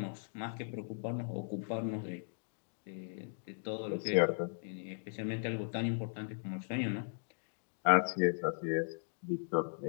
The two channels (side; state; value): right; silent; digital silence